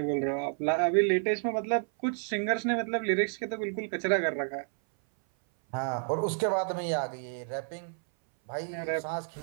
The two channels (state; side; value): silent; left; 57 dB below the other